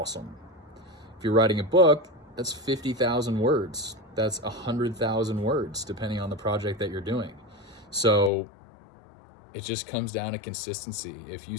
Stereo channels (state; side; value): drops out; right; at 8.3 s